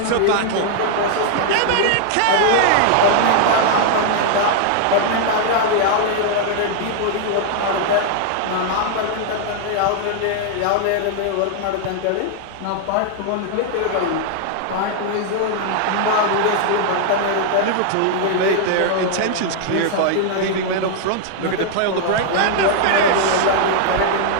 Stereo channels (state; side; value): different; both; correlation 0.00